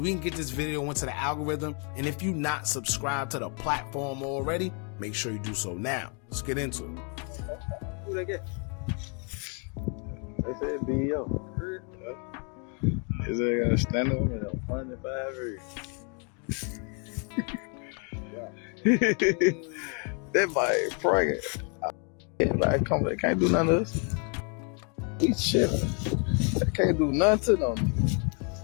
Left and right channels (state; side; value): quieter; right; 37.8 dB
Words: can get this video into the algorithm, and if you're not subscribed to the platform already, make sure you do so now. Let's get into it. Who they get? They said BEO. Is they gonna stand up? 105 years. That boy pregnant. Everybody come, they can't do nothing to us. He chilling. They can't do nothing to them.